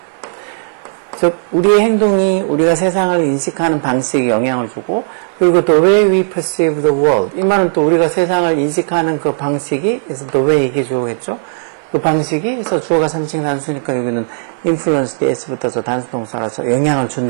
즉 우리의 행동이 우리가 세상을 인식하는 방식에 영향을 주고, 그리고 the way we perceive the world, 이 말은 또 우리가 세상을 인식하는 그 방식이 is the way 이게 주어겠죠. 그 방식이 그래서 주어가 3층 단수니까 여기는 influence s 붙어서 단수 동사라서 영향을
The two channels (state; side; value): silent; left; 57 dB below the other